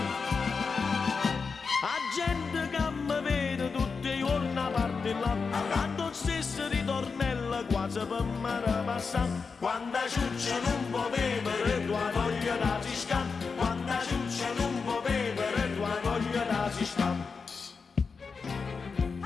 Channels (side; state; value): right; quieter; 5.0 dB